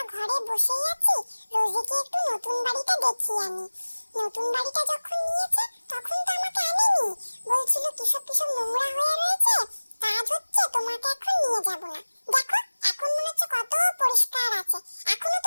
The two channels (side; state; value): both; inverted; correlation -1.00